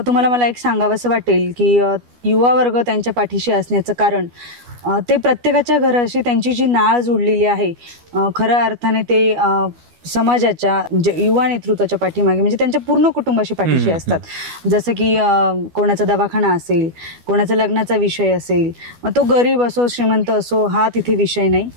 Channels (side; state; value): left; late; 12 ms